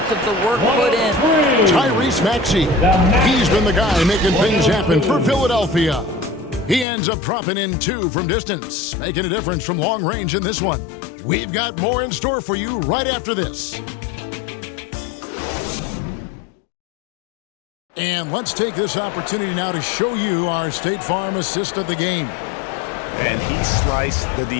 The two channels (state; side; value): drops out; right; at 6.9 s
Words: of the work put in. Tyrese Maxey. He's been the guy making things happen for Philadelphia. He ends up dropping in 2 from distance, making a difference from long range in this one. We've got more in store for you right after this. And let's take this opportunity now to show you our State Farm assist of the game. And he sliced the